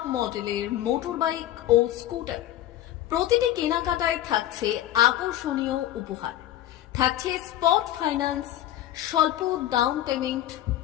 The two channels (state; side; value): quieter; right; 13.2 dB